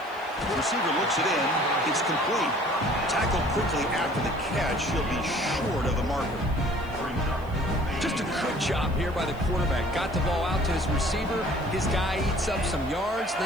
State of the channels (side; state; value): left; noise; hiss, 27 dB below the sound